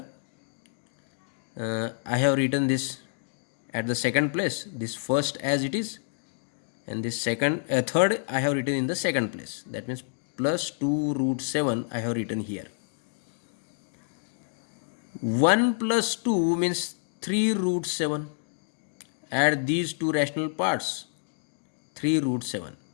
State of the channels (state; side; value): silent; right; digital silence